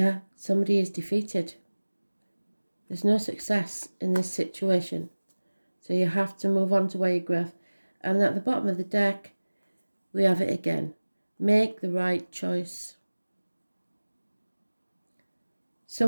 somebody is defeated. There's no success in this situation. So you have to move on to where you grow. And at the bottom of the deck, we have it again. Make the right choice.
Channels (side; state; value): both; inverted; correlation -1.00